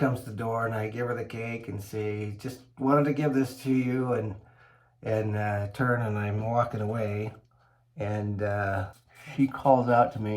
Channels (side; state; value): both; identical; correlation 1.00